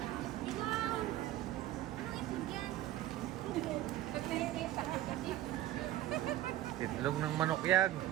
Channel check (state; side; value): quieter; left; 14.1 dB